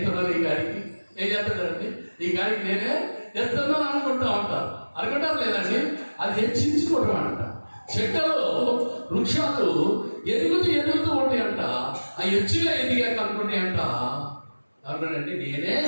ఈ గాడికి. ఏం చేస్తాడండి, ఈ గాడికి నేనే ఎత్తున్నాను అనుకుంటా ఉంటారు. అనుకుంటారు లేదండి, అది హెచ్చించుకోవడం అంట. చెట్టలో వృక్షాలు ఎదుగుతూ ఉంటాయి అంట. ఆ హెచ్చుగా ఎదిగాక అనుకుంటాయి అంట. అనుకోండి, నేనే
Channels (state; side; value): inverted; both; correlation -1.00